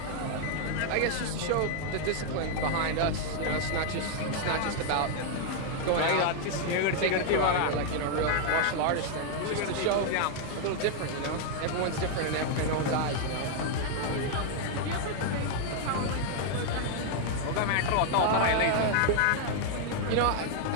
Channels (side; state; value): both; different; correlation 0.00